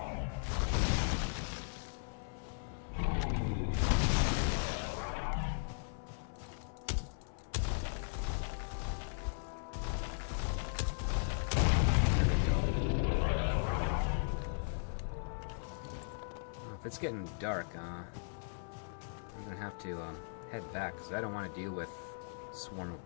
If it's getting dark, I'm gonna have to head back because I don't want to deal with a swarm of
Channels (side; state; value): right; silent; 53 dB below the other